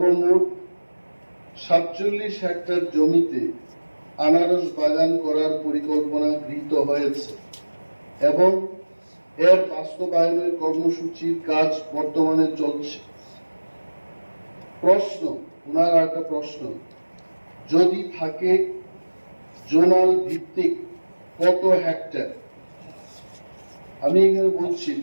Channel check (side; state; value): both; inverted; correlation -1.00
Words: 47 হেক্টর জমিতে আনারস বাগান করার পরিকল্পনা গৃহীত হয়েছে এবং এর বাস্তবায়নের কর্মসূচির কাজ বর্তমানে চলছে। প্রশ্ন, ওনার একটা প্রশ্ন, যদি থাকে জোনাল ভিত্তিক কত হেক্টর। আমি এখানে বলছি